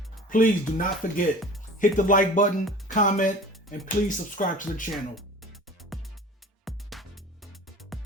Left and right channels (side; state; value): both; normal; correlation 0.41